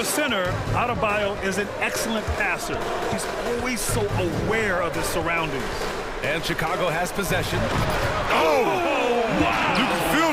a center, Adebayo is an excellent passer. He's always so aware of his surroundings. And Chicago has possession. Oh! Wow! You can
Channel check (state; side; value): identical; both; correlation 1.00